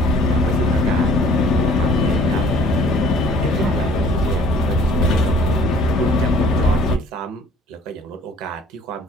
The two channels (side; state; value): both; normal; correlation 0.55